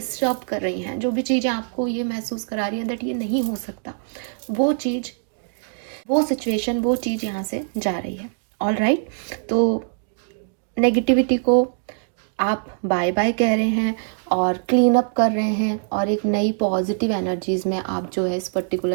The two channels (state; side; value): silent; left; digital silence